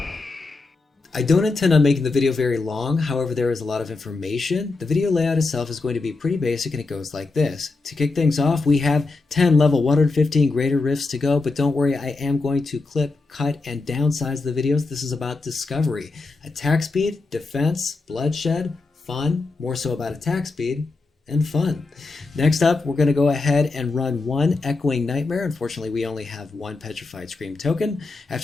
I don't intend on making the video very long, however there is a lot of information. The video layout itself is going to be pretty basic and it goes like this. To kick things off, we have 10 level 115 greater rifts to go, but don't worry, I am going to clip, cut, and downsize the videos. This is about discovery. Attack speed, defense, bloodshed, fun, more so about attack speed, and fun. Next up, we're going to go ahead and run one Echoing Nightmare. Unfortunately, we only have one Petrified Scream token.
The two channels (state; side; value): quieter; right; 3.6 dB